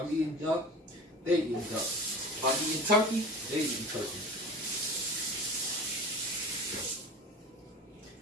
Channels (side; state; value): both; normal; correlation 0.35